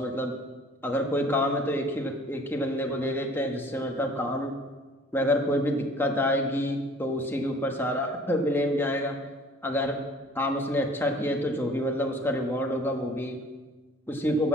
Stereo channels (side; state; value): both; normal; correlation 0.51